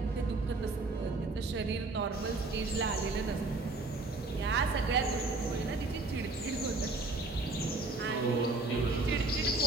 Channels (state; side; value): quieter; left; 3.3 dB